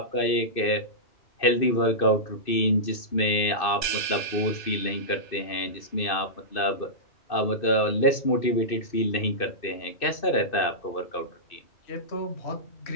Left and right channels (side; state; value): right; late; 2.6 ms